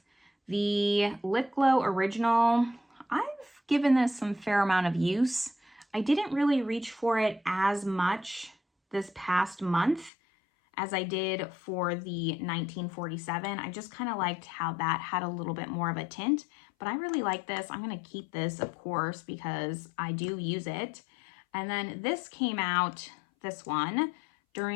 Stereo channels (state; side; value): drops out; right; at 10.1 s